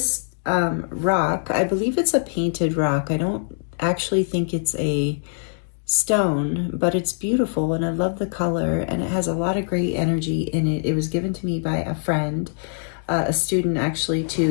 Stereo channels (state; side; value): silent; right; digital silence